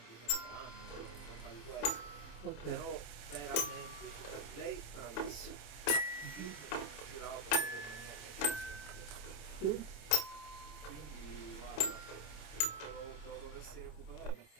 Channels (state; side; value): late; right; 27 ms